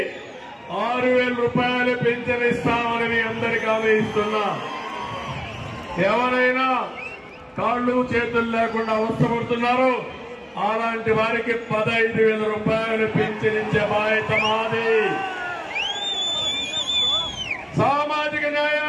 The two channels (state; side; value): identical; both; correlation 1.00